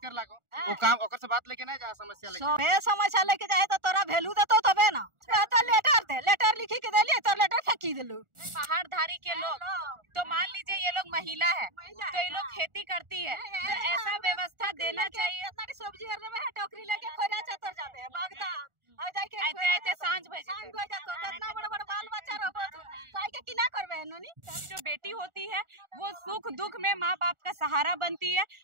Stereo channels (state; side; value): late; left; 1.4 ms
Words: कर लागो, वो काम ओकर से बात लेके ना जा, समस्या लेके समस्या लेके जाए तो तोरा वैल्यू देतो तबे ना। लेटर लिखी के देलिए तो लेटर फेंकी दिलू। पहाड़ धारी के लोग, तो मान लीजिए ये लोग महिला है तो ये लोग खेती करती है, तो ऐसा व्यवस्था देना चाहिए। सब्जी टोकरी लेके खोरा चतर जाबे बागदा ऐसे सांझ बजे इतना बड़ा बाल बच्चा रहो काहे के किना करबे नोनी। जो बेटी होती है वो सुख दुख में माँ बाप का सहारा बनती है,